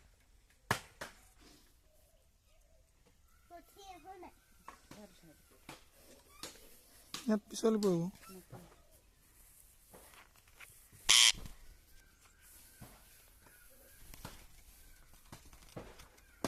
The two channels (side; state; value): both; identical; correlation 1.00